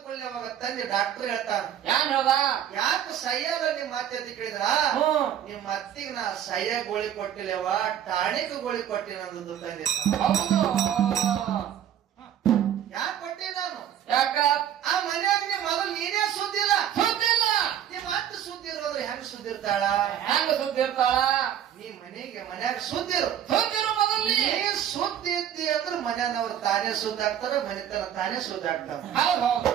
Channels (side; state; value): left; quieter; 10.1 dB